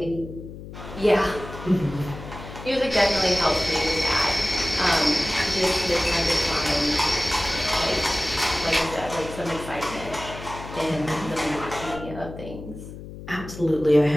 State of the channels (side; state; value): left; noise; hum, 13 dB below the sound